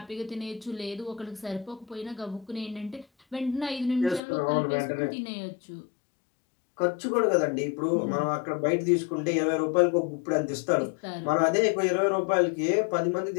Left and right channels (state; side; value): drops out; right; at 4.2 s